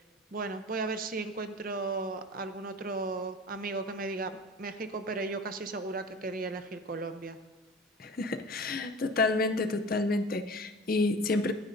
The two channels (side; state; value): both; normal; correlation 0.38